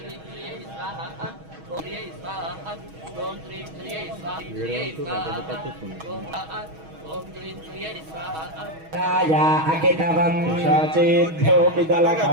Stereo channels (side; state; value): left; late; 6.3 ms